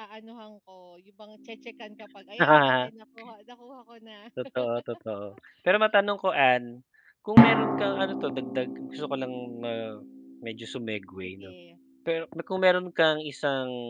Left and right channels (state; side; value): identical; both; correlation 1.00